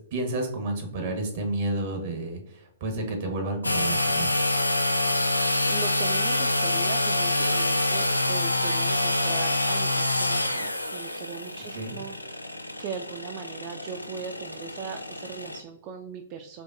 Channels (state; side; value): inverted; both; correlation -0.79